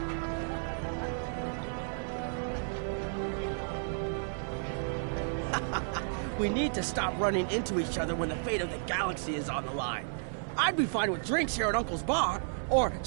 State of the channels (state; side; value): silent; left; 56 dB below the other